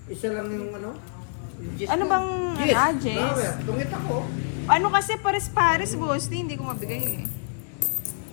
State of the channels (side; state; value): right; silent; digital silence